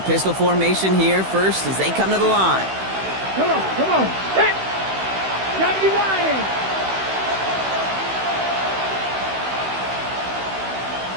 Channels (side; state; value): left; late; 16 ms